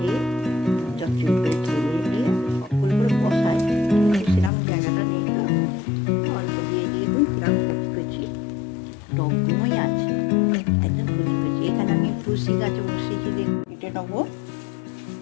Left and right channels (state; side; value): drops out; right; at 4.5 s